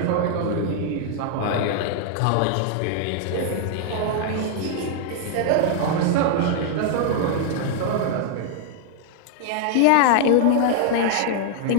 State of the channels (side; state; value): both; different; correlation 0.00